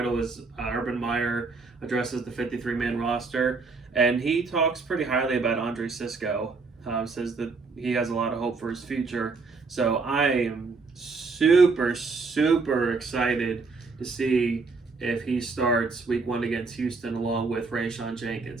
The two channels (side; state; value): left; quieter; 4.2 dB